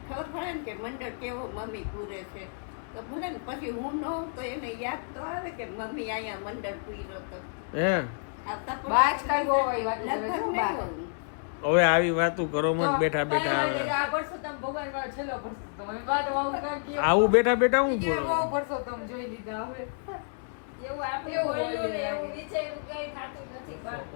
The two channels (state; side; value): silent; right; 58 dB below the other